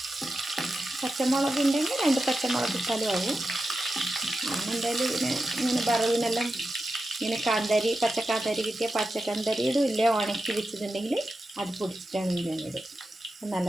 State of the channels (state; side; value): normal; both; correlation 0.91